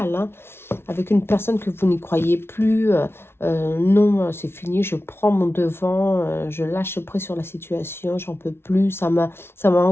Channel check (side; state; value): right; late; 0.12 ms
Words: hein, avec une personne que vous n'y croyez plus, non, c'est fini, je prends mon devant, je lâche prise sur la situation, j'en peux plus, ça m'a